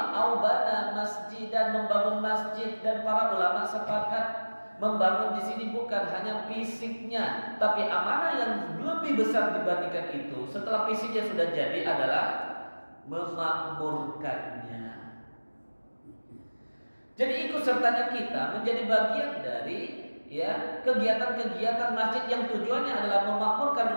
aubana masjid, dan membangun masjid. Dan para ulama sepakat membangun di sini bukan hanya fisiknya, tapi amanah yang lebih besar dibandingkan itu setelah fisiknya sudah jadi adalah memakmurkannya. Jadi ikut sertanya kita menjadi bagian dari ya kegiatan-kegiatan masjid yang tujuannya adalah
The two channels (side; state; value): both; inverted; correlation -1.00